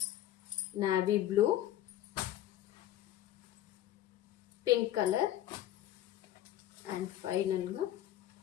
Navy blue, pink colour and ఫైనల్గా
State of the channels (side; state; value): right; quieter; 13.1 dB